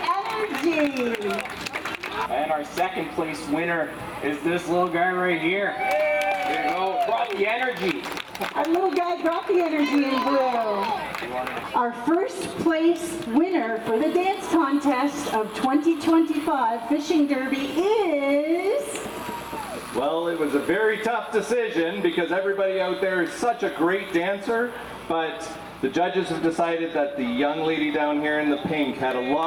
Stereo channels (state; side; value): identical; both; correlation 1.00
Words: energy. And our 2nd place winner is this little guy right here. There you go. Brought the energy. Our little guy brought the energy in blue. Our 1st place winner for the dance contest of 2025 Fishing Derby is... Well, it was a very tough decision because everybody out there is such a great dancer, but the judges have decided that the young lady down here in the pink had a